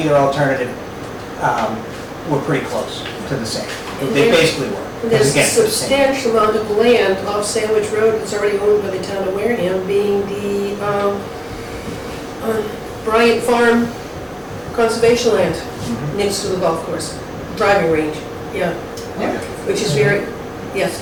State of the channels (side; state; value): both; identical; correlation 1.00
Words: alternative were pretty close to the same. They basically were. There's a Again, the same. substantial amount of land off Sandwich Road that's already owned by the town of Wareham, being the Bryant Farm Conservation Land, next to the golf course, driving range, yeah. Which is very, yes,